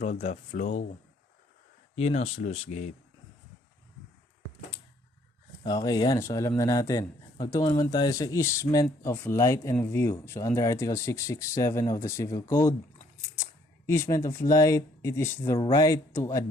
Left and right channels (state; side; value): normal; both; correlation 0.65